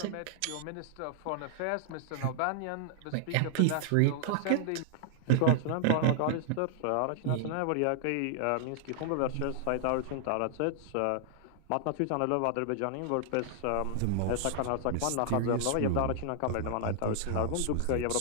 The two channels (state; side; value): different; both; correlation -0.01